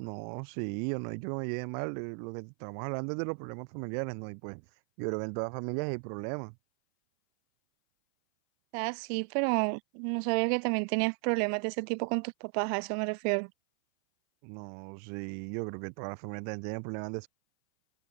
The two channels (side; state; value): left; silent; 54 dB below the other